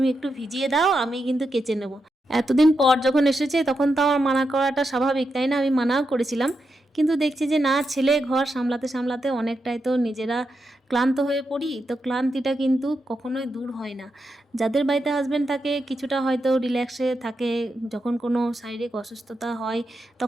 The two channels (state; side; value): normal; both; correlation 0.86